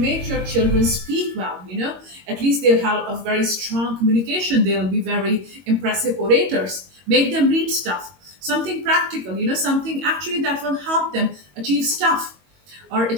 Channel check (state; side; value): late; left; 22 ms